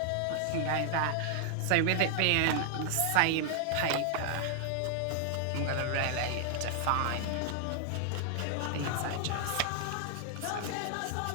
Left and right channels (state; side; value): different; both; correlation 0.00